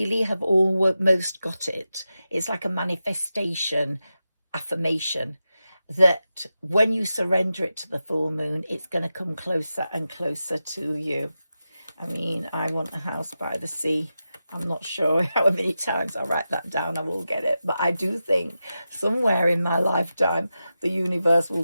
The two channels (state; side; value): inverted; both; correlation -0.91